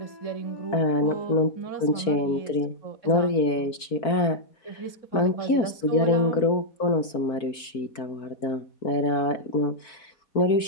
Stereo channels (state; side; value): late; right; 4.5 ms